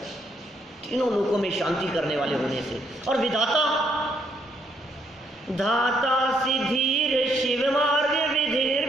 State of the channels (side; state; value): both; normal; correlation 0.71